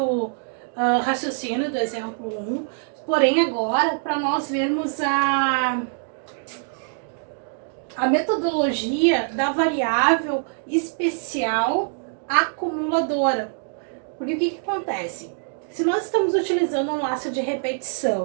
raciocínio do exemplo 1, porém agora para nós vermos a metodologia da variável especial acumuladora. Porque o que acontece? Se nós estamos utilizando um laço de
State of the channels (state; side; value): silent; left; digital silence